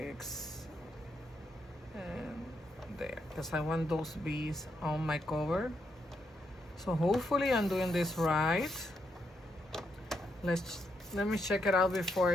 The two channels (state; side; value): normal; both; correlation 0.79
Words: and there, because I want those bees on my cover. So hopefully I'm doing this right. Let me check it out before